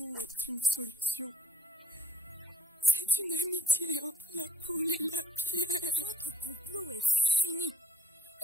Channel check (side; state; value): both; normal; correlation 0.54